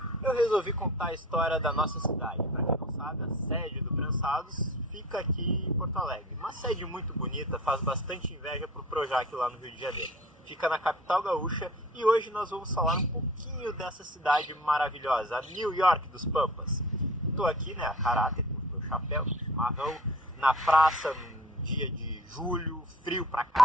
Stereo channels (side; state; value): both; normal; correlation 0.43